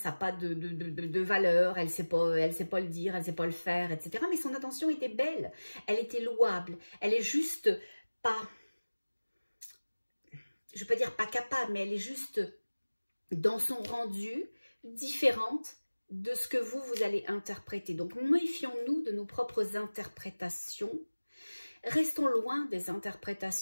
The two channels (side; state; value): both; inverted; correlation -1.00